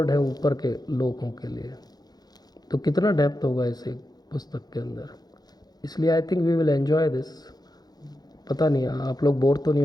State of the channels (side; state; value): right; late; 0.19 ms